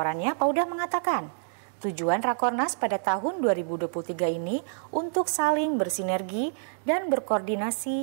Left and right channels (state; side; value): silent; left; digital silence